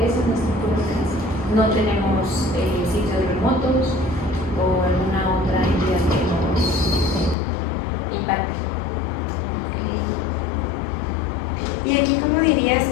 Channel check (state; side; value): drops out; right; at 7.4 s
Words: ese es nuestro puro alcance. No tenemos sitios remotos o alguna otra entidad que nos impacte. ¿Y aquí cómo dirías